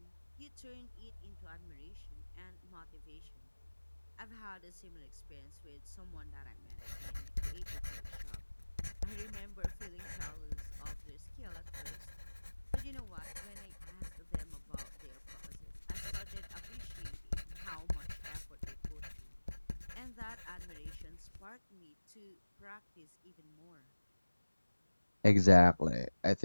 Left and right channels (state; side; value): inverted; both; correlation -1.00